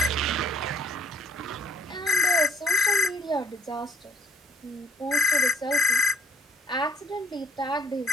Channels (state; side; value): normal; both; correlation 0.64